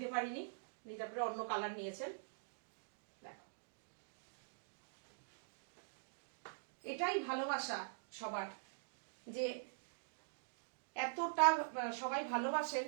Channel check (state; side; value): silent; left; digital silence